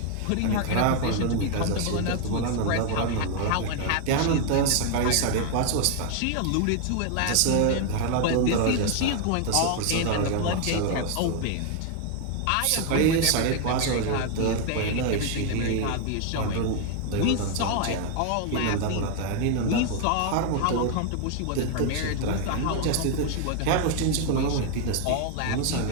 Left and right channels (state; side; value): different; both; correlation 0.00